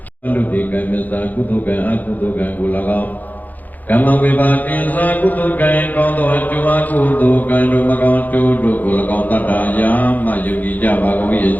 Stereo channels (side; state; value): right; late; 0.082 ms